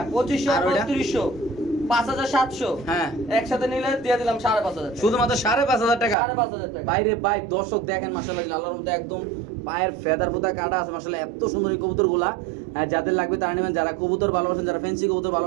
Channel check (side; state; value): left; drops out; at 6.2 s